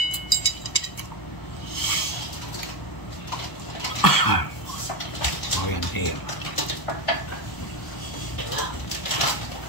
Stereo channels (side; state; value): right; late; 1.0 ms